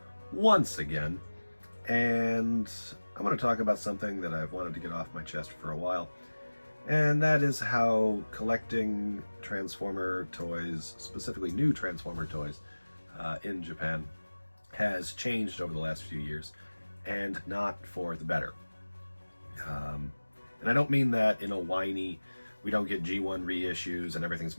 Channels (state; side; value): inverted; both; correlation -1.00